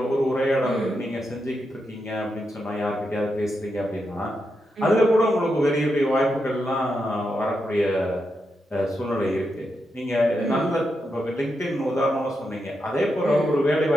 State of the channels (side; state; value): both; normal; correlation 0.85